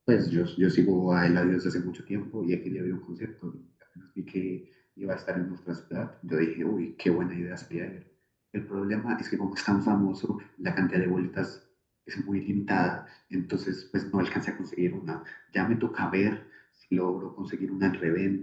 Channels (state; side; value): identical; both; correlation 1.00